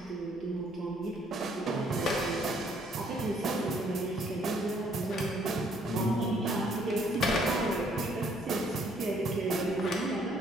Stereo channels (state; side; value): normal; both; correlation 0.65